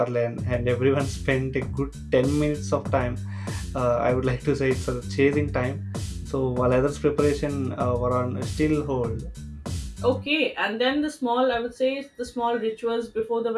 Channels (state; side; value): identical; both; correlation 1.00